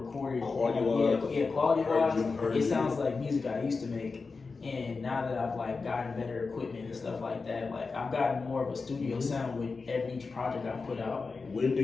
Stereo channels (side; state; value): right; quieter; 4.4 dB